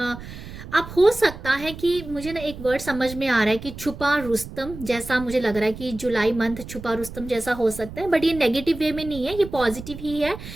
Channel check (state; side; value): noise; right; rumble, 13 dB below the sound